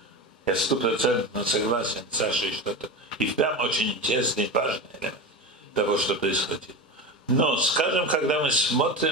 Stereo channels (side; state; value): both; normal; correlation 0.24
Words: Я 100% согласен с Сашей, что это и впрямь очень интересный и важный элемент того, что происходило. Но, скажем, когда мы